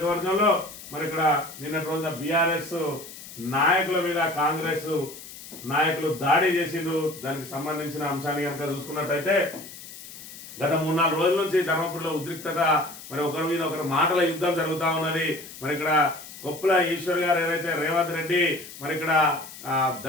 మరి ఇక్కడ నిన్నటి రోజున బీఆర్ఎస్ నాయకుల మీద కాంగ్రెస్ నాయకులు దాడి చేసిండ్రు. దానికి సంబంధించిన అంశాన్ని కనుక చూసుకున్నట్టయితే గత 3-4 రోజుల నుంచి ధర్మపురిలో ఉద్రిక్తత, మరి ఒకరి మీద ఒకరు మాటల యుద్ధం జరుగుతా ఉన్నది. మరి ఇక్కడ కొప్పుల ఈశ్వర్ గారు ఏదైతే రేవంత్ రెడ్డి మరి ఇక్కడ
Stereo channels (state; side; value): noise; left; hiss, 15 dB below the sound